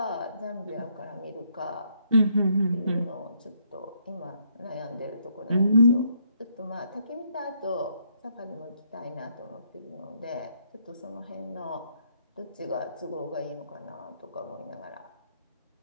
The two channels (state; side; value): inverted; both; correlation -0.72